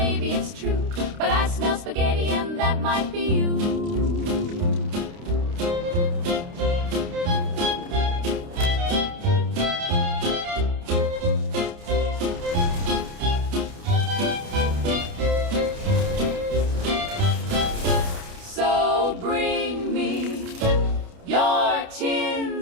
it's true, but I smell spaghetti, and that might be you. So bring me your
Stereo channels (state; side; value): late; left; 29 ms